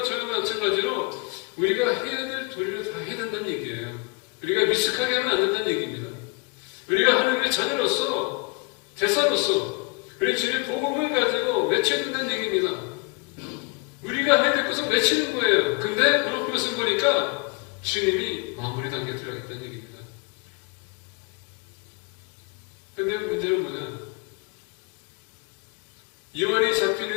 저와 마찬가지로 우리가 해야 될 도리를 다 해야 된다는 얘기예요. 우리가 미숙하게 하면 안 된다는 얘기입니다. 우리가 하나님의 자녀로서, 대사로서 우리 주님의 복음을 가지고 외쳐야 된다는 얘기입니다. 우리가 해야 될 것은 외치는 거예요. 근데 오늘 말씀 보니까 주님이 마무리 단계에 들어가겠다는 얘기입니다. 근데 문제는 뭐냐? 요한이 잡힌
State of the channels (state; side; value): quieter; right; 30.5 dB